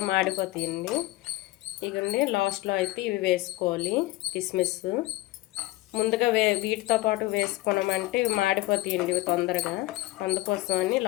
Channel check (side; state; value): right; quieter; 18.6 dB